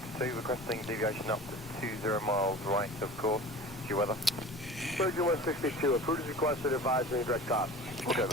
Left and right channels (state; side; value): normal; both; correlation 0.38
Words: requesting deviation up to 20 miles right, of course, to weather. Virgin 162, approved as requested, advisory direct cost. Okay,